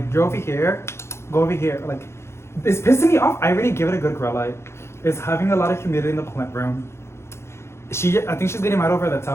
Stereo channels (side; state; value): right; late; 0.13 ms